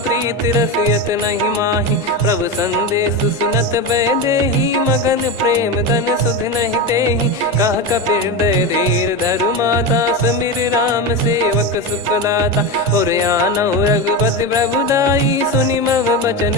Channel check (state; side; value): normal; both; correlation 0.18